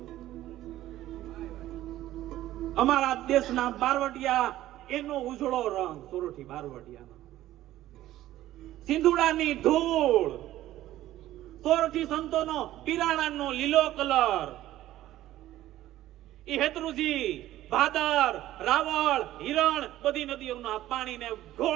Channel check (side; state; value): left; quieter; 14.4 dB